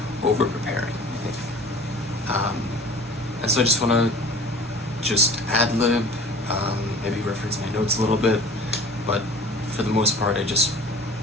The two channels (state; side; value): normal; both; correlation 0.44